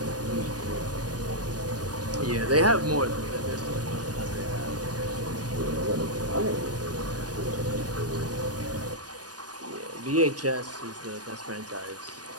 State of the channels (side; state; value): left; late; 0.69 ms